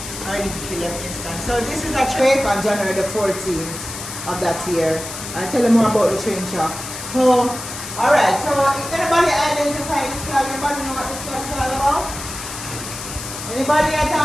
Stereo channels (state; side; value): noise; left; hiss, 9 dB below the sound